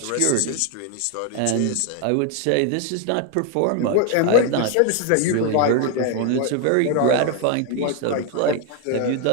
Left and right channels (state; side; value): different; both; correlation 0.00